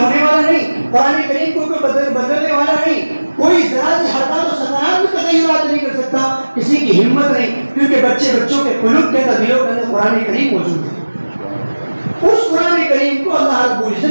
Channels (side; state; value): both; inverted; correlation -1.00